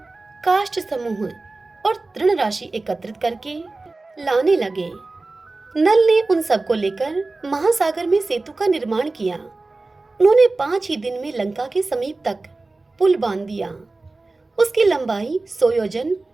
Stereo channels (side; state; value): left; quieter; 3.3 dB